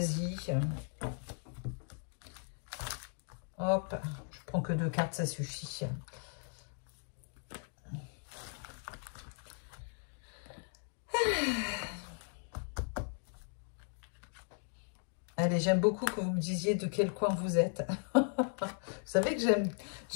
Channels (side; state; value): right; silent; 53 dB below the other